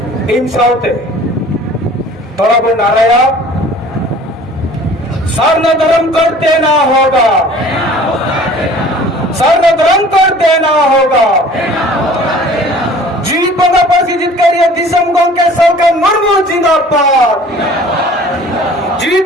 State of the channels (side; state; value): both; normal; correlation 0.48